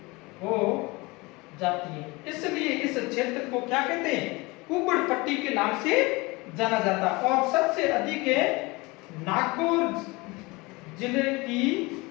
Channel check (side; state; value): right; quieter; 24.2 dB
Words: है, इसलिए इस क्षेत्र को क्या कहते हैं, कुब्बड़ पट्टी के नाम से जाना जाता है। और सबसे अधिक है नागौर जिले की